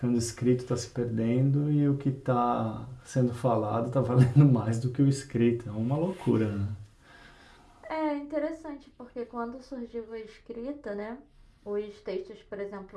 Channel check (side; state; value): both; identical; correlation 1.00